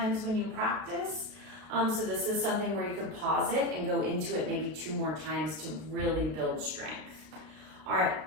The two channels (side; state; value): left; late; 32 ms